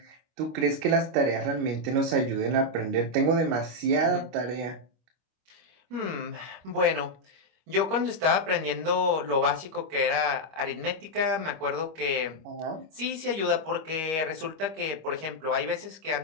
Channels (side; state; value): left; late; 25 ms